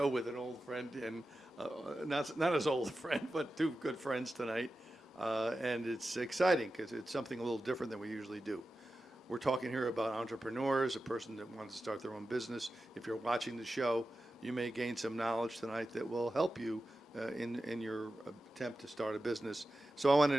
with an old friend, and not as old a friend, but two good friends tonight. And it's exciting because it's something a little different than we usually do. We're talking here about entrepreneurs, a person that wants to start their own business. If you're watching the show, you may gain some knowledge tonight that will help you in your attempt to start a business. So I want to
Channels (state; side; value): normal; both; correlation 0.93